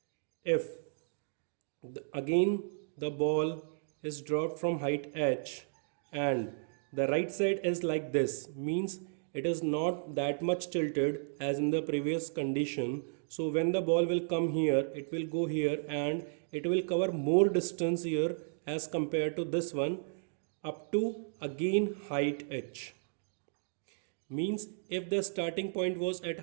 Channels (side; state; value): left; silent; digital silence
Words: If again the ball is dropped from height h and the right side is like this, means it is not that much tilted as in the previous condition. So when the ball will come here, it will go here and it will cover more distance here as compared to this one, up to again height h. Means if the starting point was at